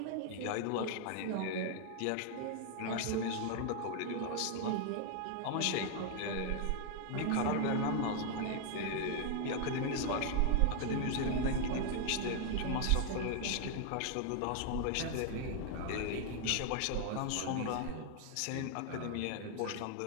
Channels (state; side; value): different; both; correlation 0.00